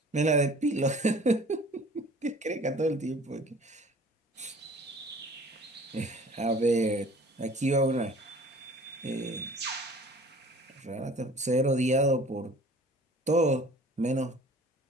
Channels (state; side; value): normal; both; correlation 0.48